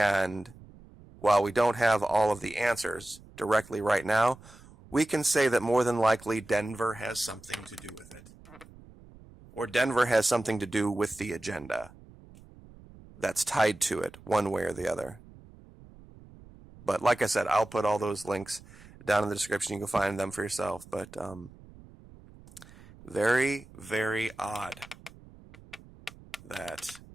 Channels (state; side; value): noise; right; rumble, 21 dB below the sound